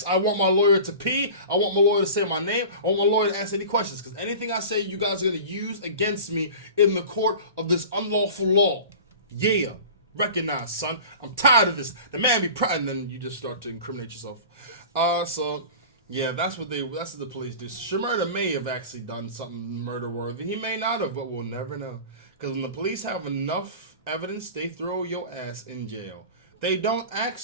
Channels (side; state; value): both; inverted; correlation -0.37